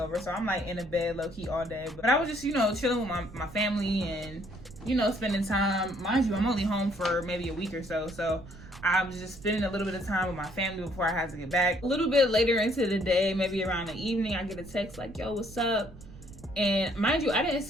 So I'm like in the bed low key all day. But I was just, you know, chilling with my family and, you know, spending time. Mind you, I'm only home for maybe a week or so. So I was just spending a little bit of time with my family before I had to get back. A little bit later into the day, maybe around the evening, I get a text like, yo, what's up? And mind you, I didn't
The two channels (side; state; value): right; noise; rumble, 17 dB below the sound